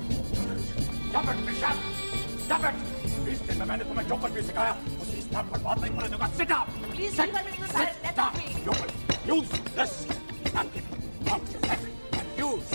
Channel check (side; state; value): both; inverted; correlation -1.00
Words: Stop it, Michelle! Stop it! इस दिन में मैंने तुम्हें जो कुछ भी सिखाया उसे इस बात पर बात नहीं करने दूंगा। Sit down! Please leave her, Mr. Sahai. Let her be. You will use this napkin on your head and use